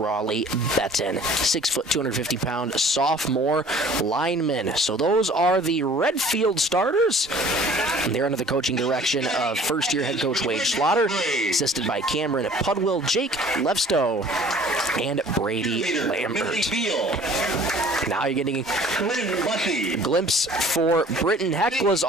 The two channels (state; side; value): normal; both; correlation 0.50